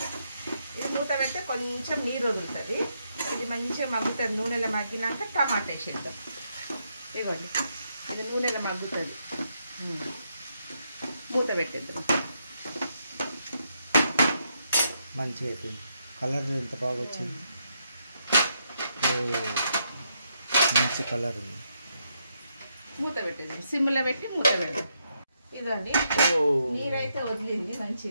ఇది మూత పెడితే కొంచెం నీరు వదులుతుంది. ఇది మంచిగా మగ్గుతుంది. నూనెలో మగ్గినాక టమాటా వేసేద్దాం. ఇవ్వండి, ఇది నూనెలో మగ్గుతుంది. మూత పెట్టేద్దాం. మంచిగా అయిపోయింది. కలర్ ఎంత బాగా వచ్చింది. మంచి కలర్ ఉంది. మూత పెట్టేద్దాం. సిమ్లో పెట్టి మూత పెడదాం. ఇదండి, నీరైతే వదిలింది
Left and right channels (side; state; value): both; inverted; correlation -0.79